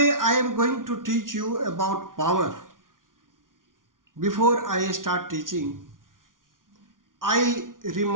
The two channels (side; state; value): left; late; 0.89 ms